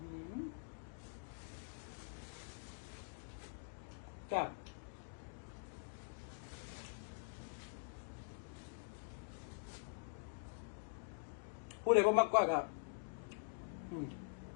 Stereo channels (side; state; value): right; silent; digital silence